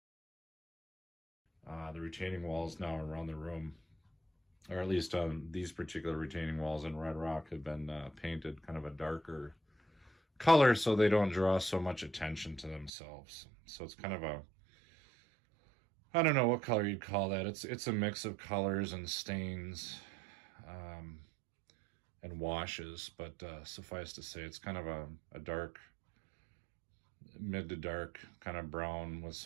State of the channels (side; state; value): left; drops out; at 12.9 s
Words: The retaining walls now around the room, or at least these particular retaining walls in Red Rock, have been painted kind of a darker color so they don't draw so much attention to themselves. So it's kind of I don't know what color you'd call that. It's a mix of colors and stains and washes, but suffice to say it's kind of a dark, mid to dark kind of brown with